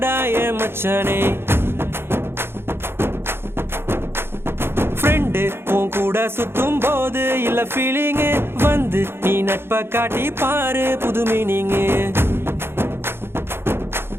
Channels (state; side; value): late; left; 0.11 ms